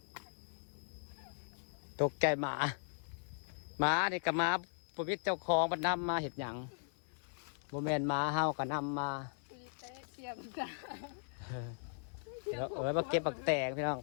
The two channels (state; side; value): silent; right; 52 dB below the other